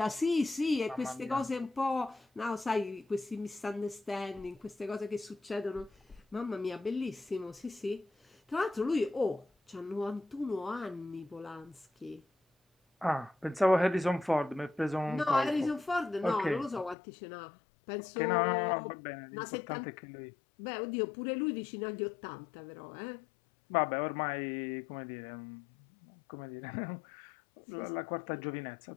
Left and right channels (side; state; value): right; drops out; at 16.9 s